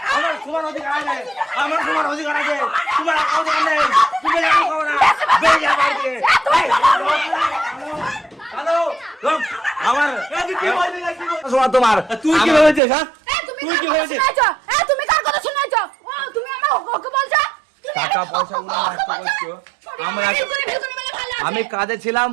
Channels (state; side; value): drops out; left; at 12.8 s